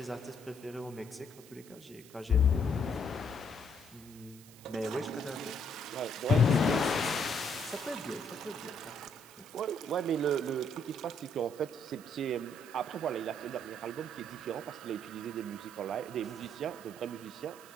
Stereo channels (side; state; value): right; noise; hiss, 20 dB below the sound